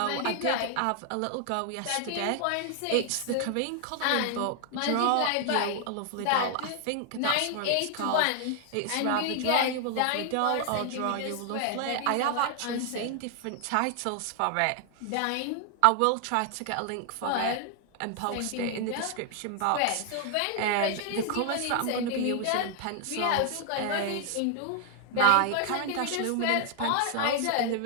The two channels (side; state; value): both; different; correlation 0.00